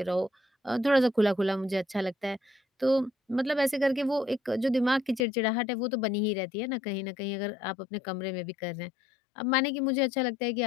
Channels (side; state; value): right; drops out; at 5.2 s